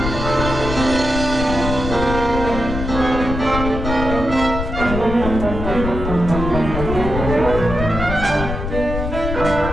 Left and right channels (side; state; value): left; noise; rumble, 5 dB below the sound